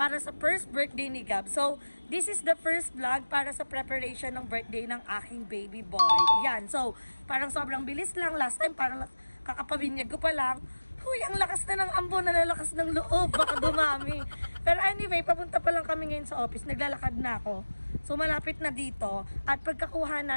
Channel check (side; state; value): both; inverted; correlation -1.00